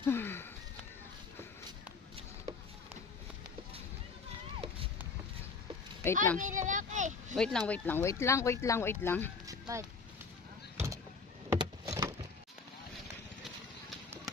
Wait Ay, lang. may lalaki. Wait lang. Ba't?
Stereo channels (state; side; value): quieter; right; 4.7 dB